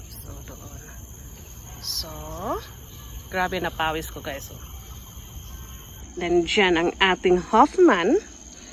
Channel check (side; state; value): both; identical; correlation 1.00